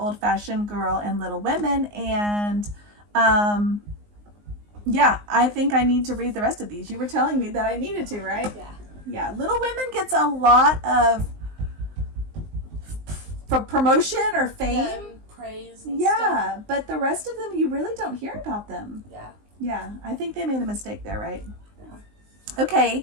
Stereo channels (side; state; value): left; late; 19 ms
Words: Fashioned Girl and Little Women, and yeah, I think I need to read the rest of these. You were telling me that I needed to, right? Yeah. Yeah, Little Women gets a lot of for promotion or fame. Yeah, and praise and stuff. Yeah, but the rest of them, you really don't hear about them. Yeah. Yeah, I think they made a mistake there, right? Yeah.